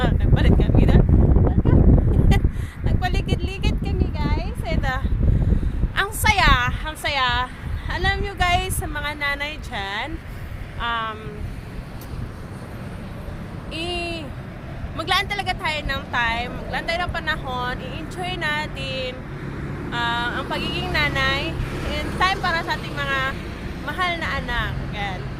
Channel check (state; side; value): identical; both; correlation 1.00